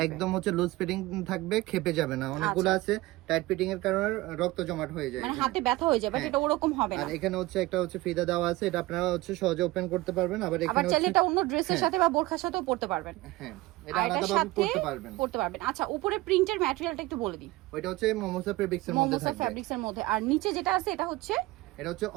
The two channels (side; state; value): left; quieter; 19.6 dB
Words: একদম হচ্ছে লুজ ফিটিং থাকবে, খেপে যাবে না। অনেকগুলো আছে টাইট ফিটিং এর কারণে রক্ত জমাট হয়ে যায়, মানে হাতে ব্যথা হয়ে যায়, বাট এটা ওরকম হবে না। আর এখানে হচ্ছে একটা হচ্ছে ফিতা দেওয়া আছে, এটা আপনারা হচ্ছে সহজে ওপেন করতে পারবেন। আবার এখানে চাইলে এটা অন্য ড্রেসের সাথে বা বোরখার সাথেও পরতে পারবেন। হ্যাঁ, এটা আলাদাভাবে পরতে পারবেন। আচ্ছা, উপরে প্রিন্টের ম্যাটেরিয়ালটা একটু বলে দিই। ওইটা হচ্ছে মোমোসা ফেব্রিক্সের মধ্যে থাকবে। মোমোসা ফেব্রিক্সের মধ্যে। আর নিচে যেটা আছে এটা হচ্ছে